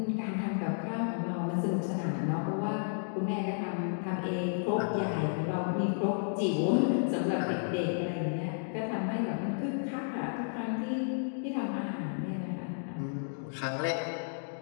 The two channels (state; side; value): silent; right; digital silence